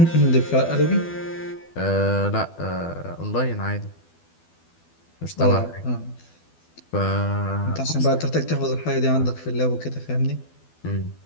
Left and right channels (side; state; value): right; late; 12 ms